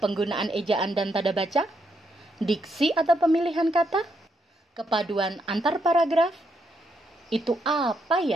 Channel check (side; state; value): both; normal; correlation 0.78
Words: ejaan dan tanda baca, diksi atau pemilihan kata, kepaduan antar paragraf. Itu apa